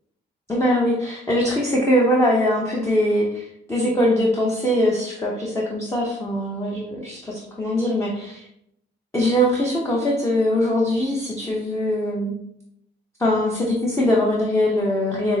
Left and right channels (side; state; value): both; normal; correlation 0.63